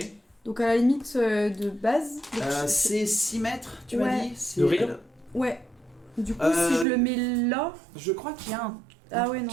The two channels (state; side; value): drops out; left; at 6.9 s